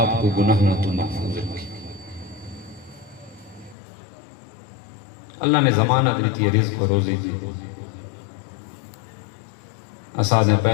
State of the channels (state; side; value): drops out; right; at 3.8 s